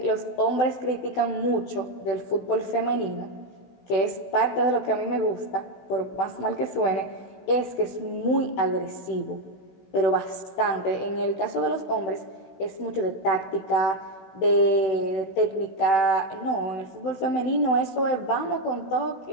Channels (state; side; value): late; right; 16 ms